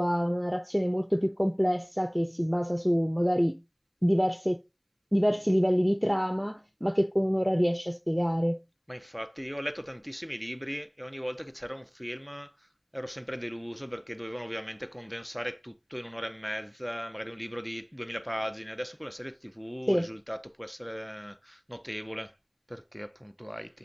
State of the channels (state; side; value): identical; both; correlation 1.00